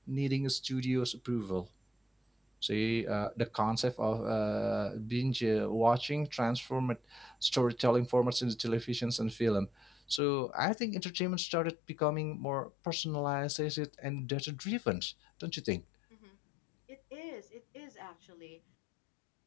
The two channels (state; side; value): drops out; right; at 10.2 s